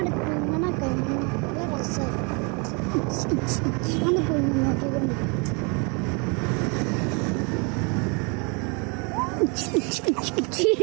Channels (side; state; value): left; quieter; 32.9 dB